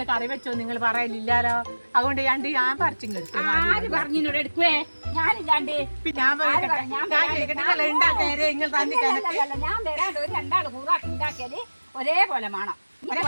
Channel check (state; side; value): inverted; both; correlation -1.00